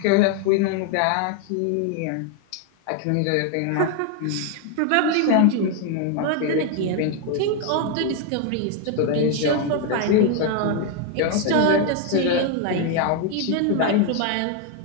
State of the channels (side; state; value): both; different; correlation 0.01